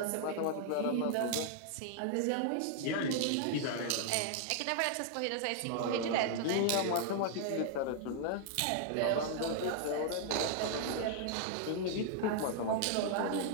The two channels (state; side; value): different; both; correlation -0.01